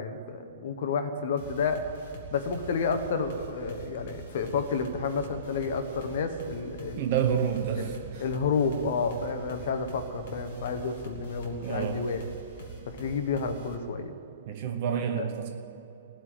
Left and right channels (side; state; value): both; inverted; correlation -0.42